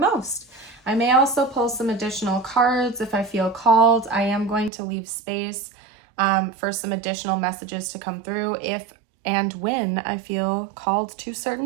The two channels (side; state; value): left; drops out; at 4.7 s